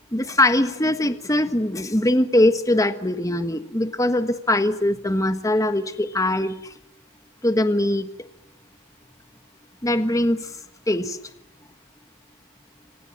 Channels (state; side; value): normal; both; correlation 0.69